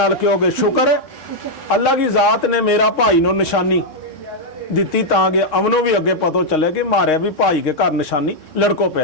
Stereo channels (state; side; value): late; right; 3.6 ms